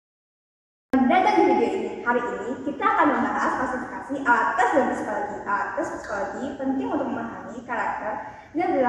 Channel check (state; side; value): identical; both; correlation 1.00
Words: Datang di video ini. Hari ini kita akan membahas klasifikasi alat tes dan psikologi. Alat tes psikologi penting untuk memahami karakter dan